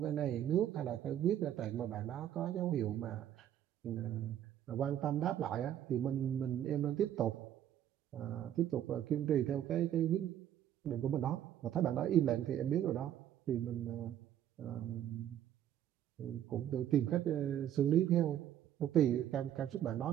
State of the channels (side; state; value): left; quieter; 11.0 dB